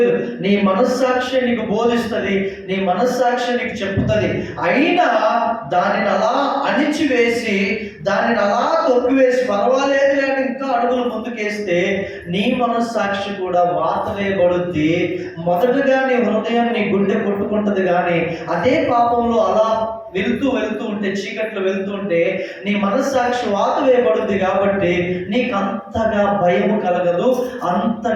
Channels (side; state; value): both; identical; correlation 1.00